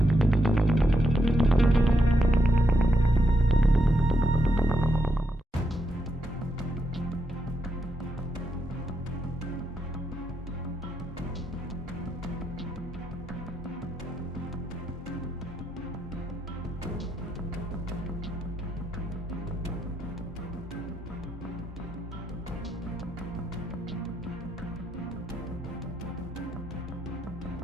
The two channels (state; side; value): normal; both; correlation 0.81